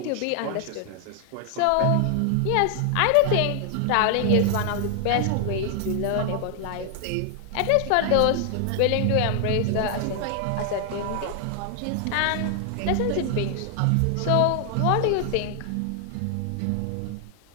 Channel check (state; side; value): different; both; correlation 0.00